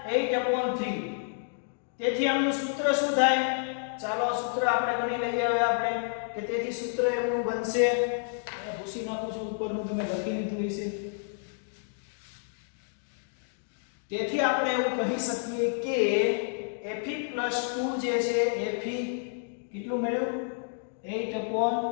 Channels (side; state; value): right; silent; digital silence